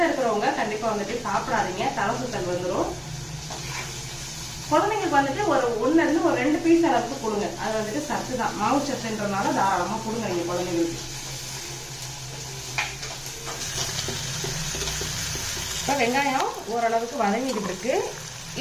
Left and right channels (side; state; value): both; identical; correlation 1.00